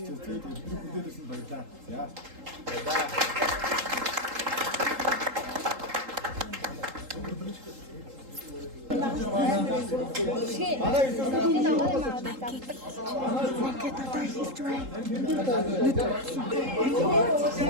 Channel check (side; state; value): left; late; 3.8 ms